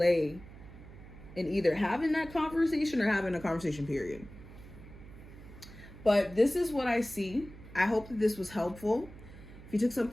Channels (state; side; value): noise; right; hum, 17 dB below the sound